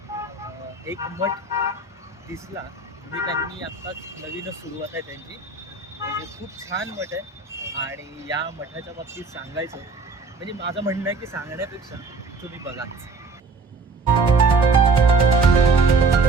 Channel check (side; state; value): left; quieter; 4.1 dB